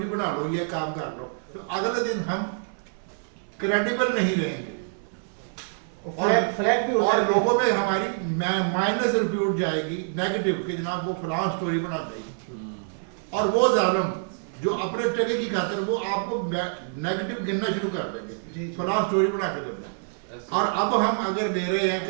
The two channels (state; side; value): silent; left; 61 dB below the other